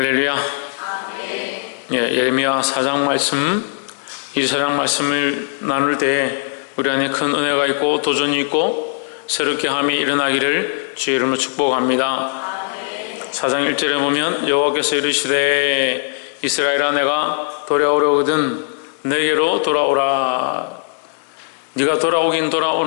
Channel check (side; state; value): right; silent; 67 dB below the other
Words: 예, 예레미야 4장 말씀, 이 4장 말씀을 나눌 때 우리 안에 큰 은혜가 있고 도전이 있고 새롭게 함이 일어나기를 주의 이름으로 축복합니다. 4장 1절에 보면 여호와께서 이르시되 이스라엘아 내가 돌아오려거든 내게로 돌아오라. 네가 돌아오긴